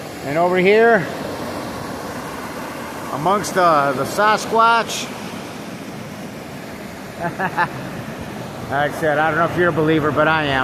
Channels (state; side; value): identical; both; correlation 1.00